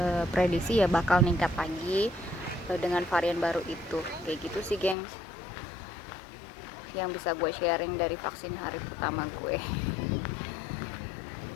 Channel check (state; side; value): drops out; right; at 5.0 s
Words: prediksi ya bakal ningkat lagi dengan varian baru itu, kayak gitu sih gengs, yang bisa gue sharing dari vaksin hari pertama gue.